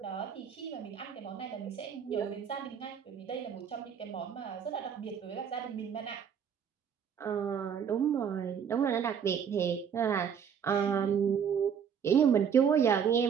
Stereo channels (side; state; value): left; quieter; 7.6 dB